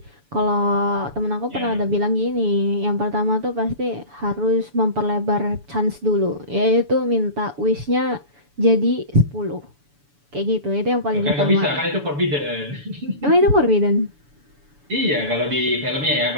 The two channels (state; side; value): late; left; 7.0 ms